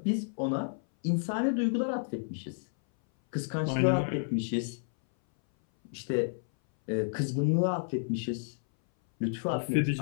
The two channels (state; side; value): silent; right; 57 dB below the other